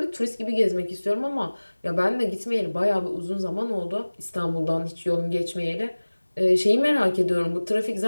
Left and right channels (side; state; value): both; inverted; correlation -1.00